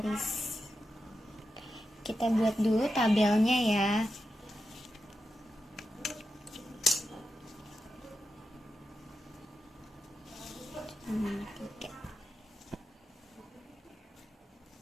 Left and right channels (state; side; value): normal; both; correlation 0.89